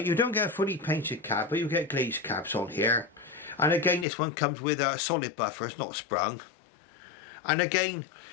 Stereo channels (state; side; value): drops out; right; at 4.0 s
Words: don't get a fully painted cab, but you get glazed cabs on here. And again, this one comes with a solid buffer, it's not sprung. And again,